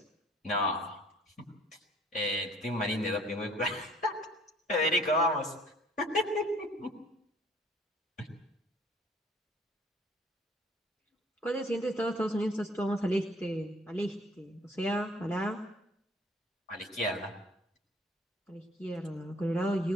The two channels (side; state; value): both; normal; correlation 0.55